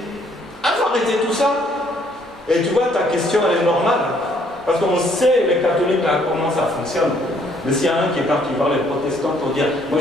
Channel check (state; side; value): normal; both; correlation 0.65